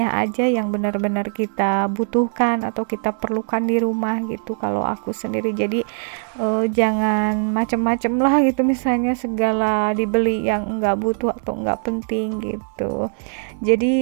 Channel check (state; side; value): silent; left; 58 dB below the other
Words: aja yang benar-benar kita butuhkan atau kita perlukan di rumah gitu kalau aku sendiri. Jadi jangan macem-macem lah gitu, misalnya segala dibeli yang enggak butuh atau enggak penting gitu.